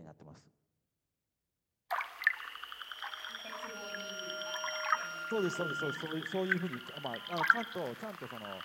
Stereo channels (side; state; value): both; identical; correlation 1.00